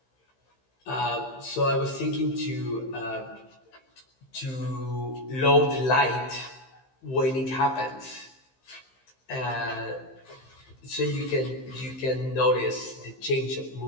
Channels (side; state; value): right; late; 15 ms